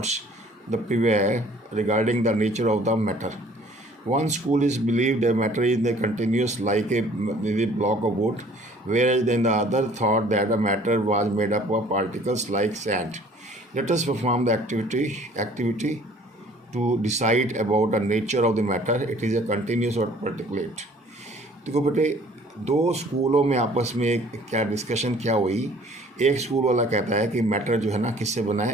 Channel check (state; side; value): normal; both; correlation 0.54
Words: the prevail regarding the nature of the matter. One school is believed that matter is the continuous like a block of wood, whereas then the other thought that the matter was made up of particles like sand. Let us perform the activity to decide about the nature of the matter. It is a continuous or particulate. देखो बेटे, 2 स्कूलों में आपस में क्या discussion क्या हुई। एक स्कूल वाला कहता है कि मैटर जो है ना किससे बना